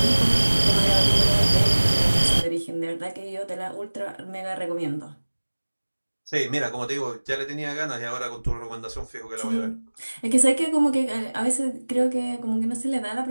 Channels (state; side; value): inverted; both; correlation -1.00